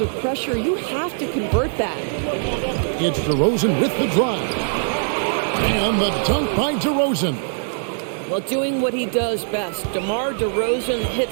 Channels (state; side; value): silent; left; digital silence